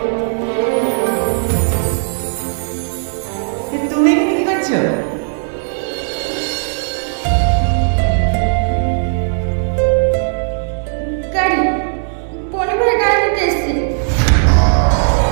তুমি এখানে কি করছো? গাড়ি পরিবার গাড়ি নিতে এসছে।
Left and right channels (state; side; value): silent; left; 69 dB below the other